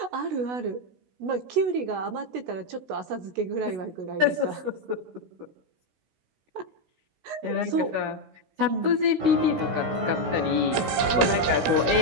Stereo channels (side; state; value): left; late; 16 ms